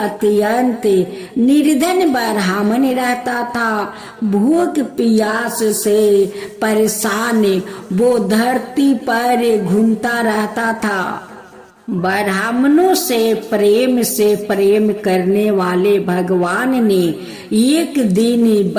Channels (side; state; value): both; identical; correlation 1.00